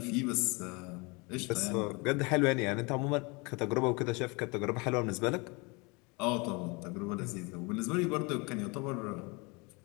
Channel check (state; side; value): quieter; right; 28.5 dB